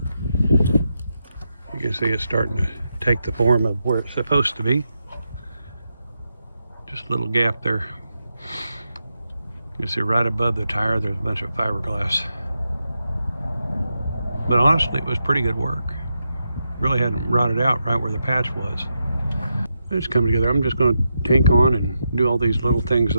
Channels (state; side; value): inverted; both; correlation -0.86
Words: you can see it's starting to take the form of where it's supposed to be. Just a little gap there. You can see right above the tire, there's a bunch of fiberglass. But honestly, it was pretty good work. Really hadn't rotted out right where the patch was. It's coming together. I'm just going to tank on and do all these little things